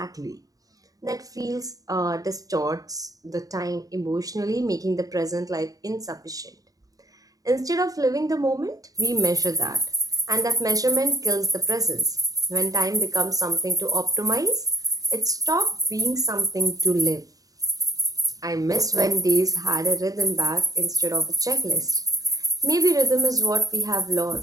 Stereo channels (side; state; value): left; late; 0.17 ms